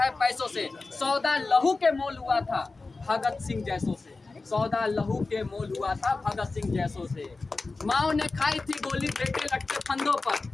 पैसों से। सौदा लहू के मोल हुआ था भगत सिंह जैसों से, सौदा लहू के मोल हुआ था भगत सिंह जैसों से। माओ ने खाई थी गोली बेटे लटके फंदों पर,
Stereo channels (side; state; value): right; quieter; 3.7 dB